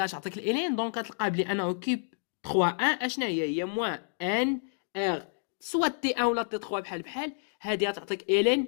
اش عطيك الالين. دونك غتلقى بلي انه كي 3 1 اشنا هي موان ان ار سوا تي 1 ولا تي 3 بحال بحال. هذه غتعطيك الين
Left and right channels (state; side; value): silent; right; digital silence